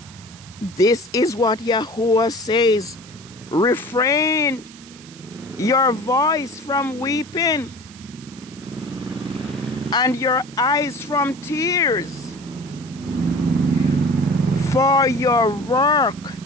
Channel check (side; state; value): right; noise; hiss, 20 dB below the sound